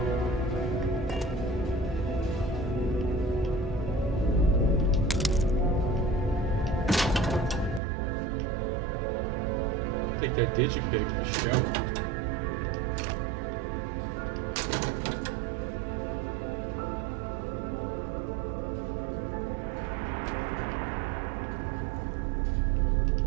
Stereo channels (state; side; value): drops out; left; at 7.8 s